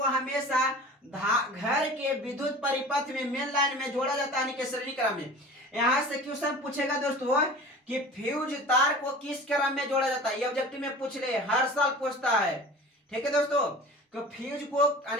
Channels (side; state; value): both; normal; correlation 0.39